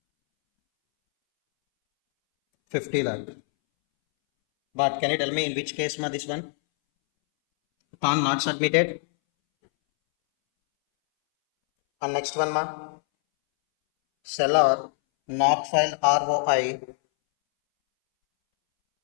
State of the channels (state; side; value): silent; right; 62 dB below the other